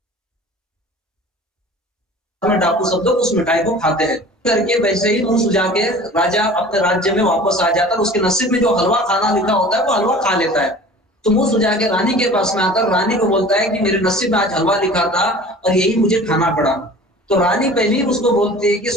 में डाकू सब लोग उस मिठाई को खाते हैं करके वैसे ही मुंह सुझा के राजा अपने राज्य में वापस आ जाता है। उसके नसीब में जो हलवा खाना लिखा होता है वो हलवा खा लेता है। तो मुंह सुझा के रानी के पास में आता, रानी को बोलता है कि मेरे नसीब में आज हलवा लिखा था और यही मुझे खाना पड़ा। तो रानी पहले ही उसको बोलती है कि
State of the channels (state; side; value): normal; both; correlation 0.43